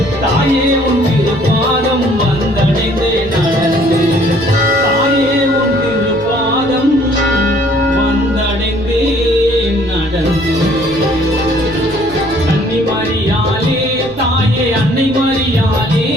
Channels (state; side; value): noise; right; rumble, 19 dB below the sound